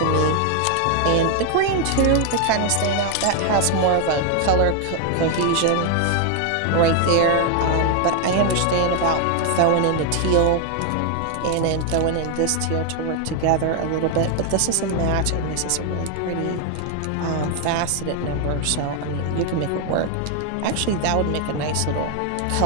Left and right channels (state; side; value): different; both; correlation 0.01